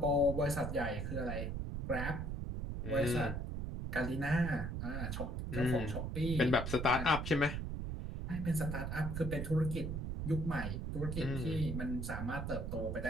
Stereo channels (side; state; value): right; noise; rumble, 3 dB below the sound